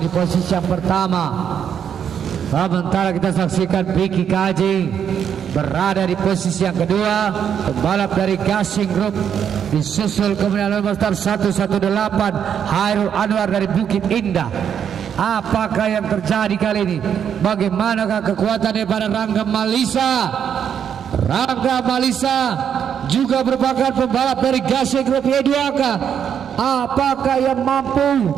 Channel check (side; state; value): left; quieter; 8.3 dB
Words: di posisi yang pertama. Sementara kita saksikan Vicky KJ berada di posisi yang kedua, pembalap dari Gasing Group, disusul kemudian nomor 118 Hairul Anwar dari Bukit Indah. Apakah yang terjadi kali ini? Bagaimanakah kekuatan daripada Rangga Malisa? Rangga Malisa juga merupakan pembalap dari Gasing Group Y2K. Apakah yang mampu